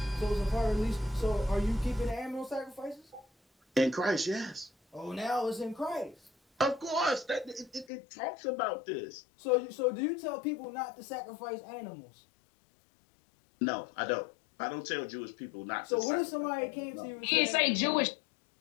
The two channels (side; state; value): right; drops out; at 7.9 s